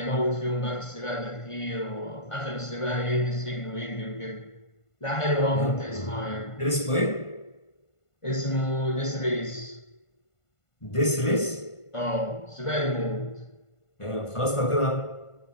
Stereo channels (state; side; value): late; right; 1.5 ms